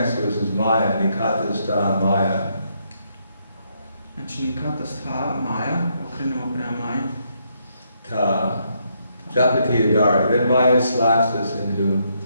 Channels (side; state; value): both; inverted; correlation -0.75